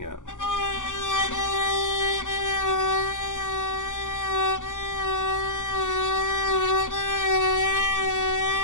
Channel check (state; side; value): late; right; 0.87 ms